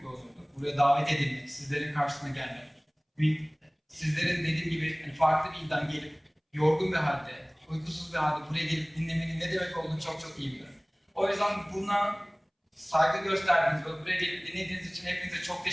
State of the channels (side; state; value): both; identical; correlation 1.00